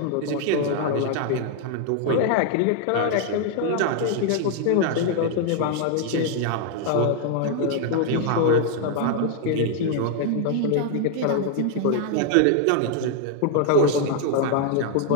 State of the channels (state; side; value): different; both; correlation 0.00